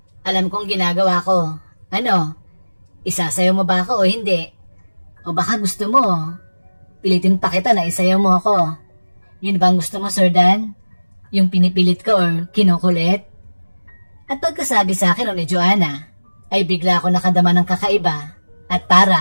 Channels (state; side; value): inverted; both; correlation -1.00